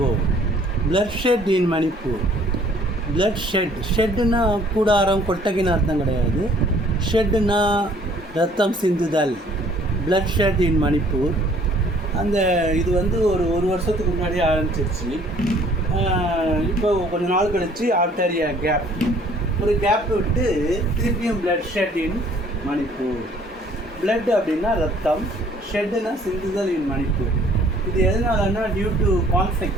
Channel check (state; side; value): normal; both; correlation 0.57